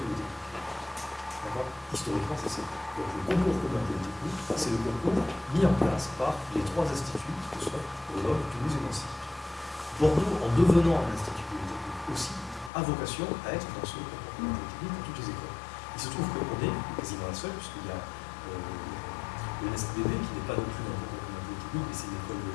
de technique. D'accord? Historiquement, c'est ça. Donc le concours commun de technique, c'est le concours mis en place par les 3 instituts, que ce soit Grenoble, Toulouse et Nancy. Bordeaux, en devenant un institut polytechnique aussi, a vocation à être dans ce concours commun de technique pour toutes les écoles. Il se trouve qu'on est quasiment la seule, puisqu'il y a le NSTBB, qui n'est pas non plus dans le concours commun de technique, mais c'est une école de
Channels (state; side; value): drops out; right; at 12.7 s